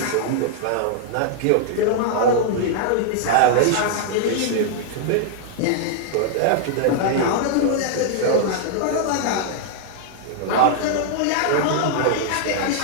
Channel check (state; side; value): different; both; correlation -0.01